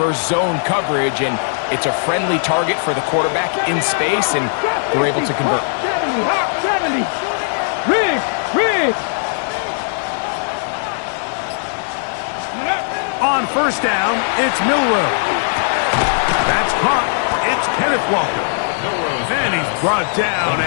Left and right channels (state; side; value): silent; right; digital silence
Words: zone coverage. And it's a friendly target for the quarterback in space, and they're able to convert. 70. Riggs. On 1st down, it's Milrow. That's caught. It's Kenneth Walker. And he's brought down